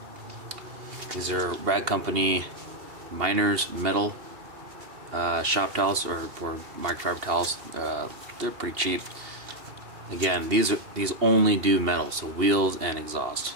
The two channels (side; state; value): left; late; 2.8 ms